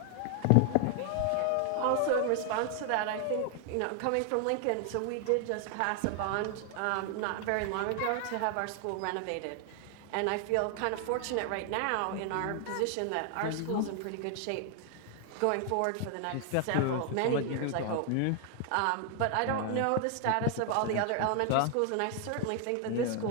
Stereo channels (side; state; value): both; different; correlation 0.00